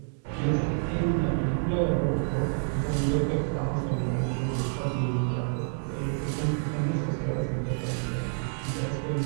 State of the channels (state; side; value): silent; left; digital silence